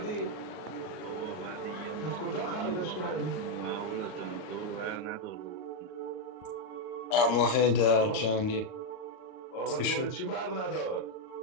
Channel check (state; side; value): late; right; 38 ms